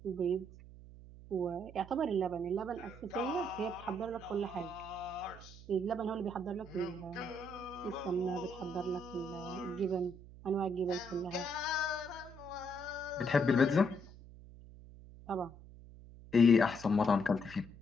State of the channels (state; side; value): noise; right; hum, 18 dB below the sound